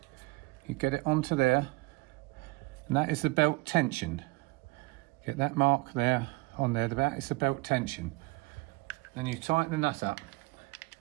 You get it onto there, and that is the belt tension. Get that mark there on there. That is the belt tension. Then you tighten the nut up.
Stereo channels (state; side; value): quieter; left; 24.5 dB